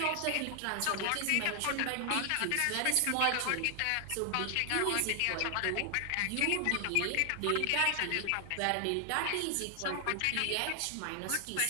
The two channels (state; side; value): different; both; correlation 0.00